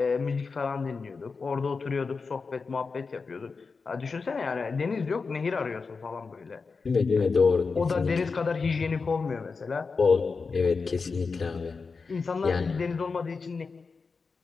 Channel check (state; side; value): quieter; right; 4.7 dB